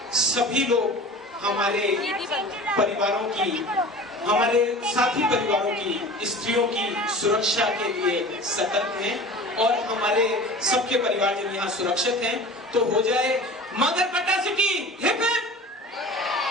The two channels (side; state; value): both; normal; correlation 0.38